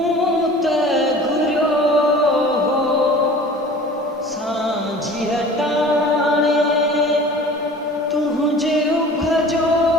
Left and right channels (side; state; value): both; normal; correlation 0.43